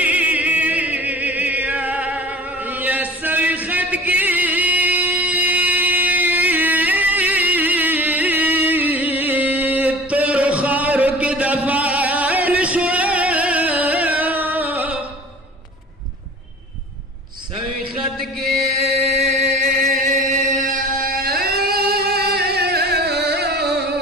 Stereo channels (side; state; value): both; normal; correlation 0.41